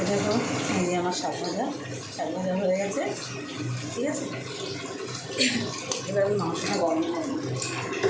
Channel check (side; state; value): both; identical; correlation 1.00